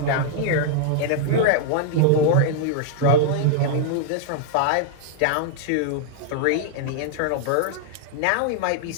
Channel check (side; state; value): both; different; correlation -0.01